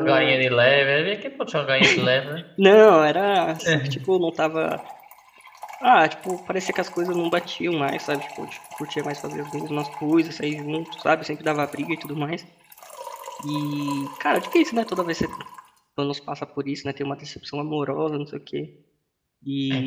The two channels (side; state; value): both; identical; correlation 1.00